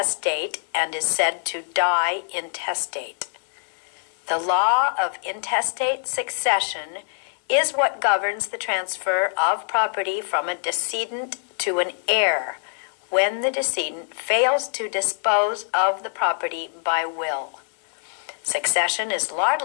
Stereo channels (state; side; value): silent; right; 63 dB below the other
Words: and is said to die intestate. The law of intestate succession is what governs the transfer of property from a decedent to an heir when the decedent fails to dispose of the property by will. Succession is